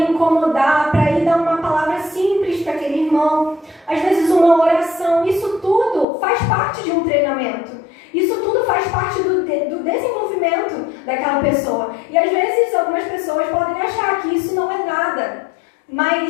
incomodar para ir dar uma palavra simples para aquele irmão. Às vezes, uma oração. Isso tudo faz parte de um treinamento. Isso tudo faz parte do desenvolvimento daquela pessoa. E, às vezes, algumas pessoas podem achar que isso não é nada.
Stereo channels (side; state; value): right; drops out; at 6.1 s